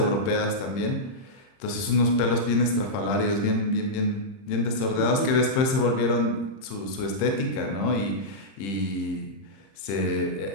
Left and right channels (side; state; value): right; late; 30 ms